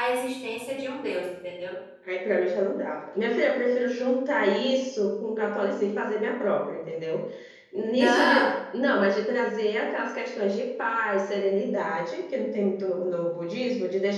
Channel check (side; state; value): both; identical; correlation 1.00